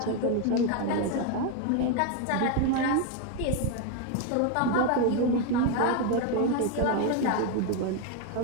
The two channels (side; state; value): both; different; correlation 0.01